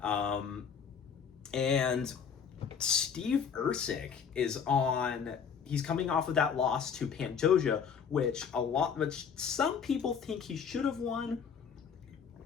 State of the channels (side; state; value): right; quieter; 6.8 dB